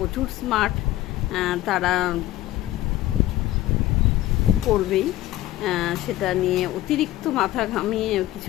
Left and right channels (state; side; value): quieter; right; 15.3 dB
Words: স্মার্ট, তারা করবেই, সেটা নিয়ে অতিরিক্ত মাথা ঘামিয়ে